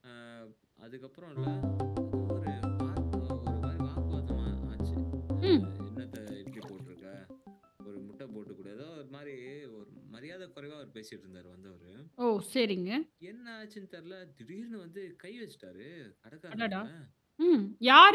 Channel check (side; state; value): both; identical; correlation 1.00